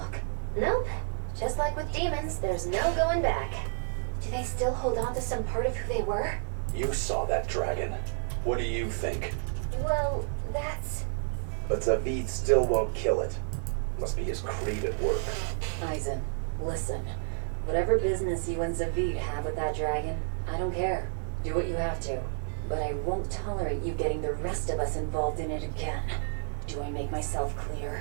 Nope. Just like with demons, there's no going back. Do they still hold on to some part of who they were? You saw that dragon. What do you think? Well, that's... But Zavid still won't kill it. Must be his creed at work. Eisen, listen. Whatever business you and Zavid have with that dragon, I don't care. Do what you have to. But I won't tolerate you getting the rest of us involved in it again. Do I make myself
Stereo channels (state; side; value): silent; left; digital silence